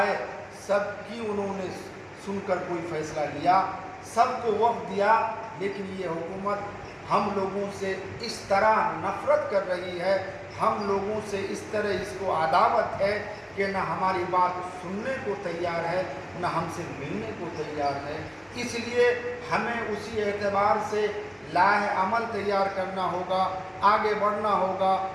سب کی انہوں نے سن کر کوئی فیصلہ لیا سب کو وقت دیا لیکن یہ حکومت ہم لوگوں سے اس طرح نفرت کر رہی ہے ہم لوگوں سے اس طرح اس کو عداوت ہے کہ نہ ہماری بات سننے کو تیار ہے نہ ہم سے ملنے کو تیار ہے اس لیے ہمیں اسی اعتبار سے لاہ عمل تیار کرنا ہوگا آگے بڑھنا ہوگا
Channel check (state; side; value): identical; both; correlation 1.00